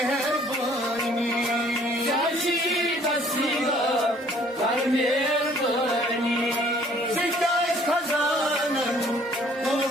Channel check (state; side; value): normal; both; correlation 0.58